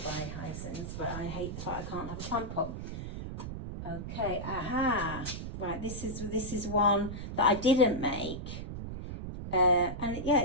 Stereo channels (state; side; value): noise; right; rumble, 7 dB below the sound